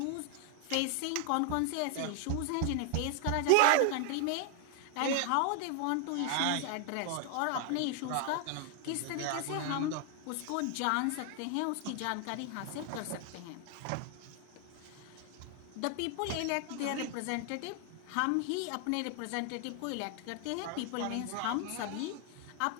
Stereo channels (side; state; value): both; different; correlation 0.00